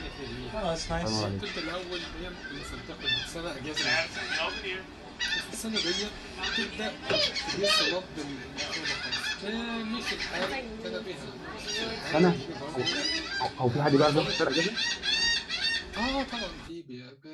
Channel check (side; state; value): both; identical; correlation 1.00